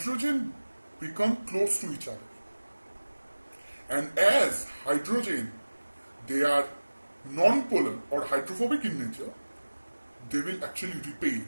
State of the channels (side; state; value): both; inverted; correlation -1.00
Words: become close to each other, and as hydrogen, they are non-polar or hydrophobic in nature, they will actually repel,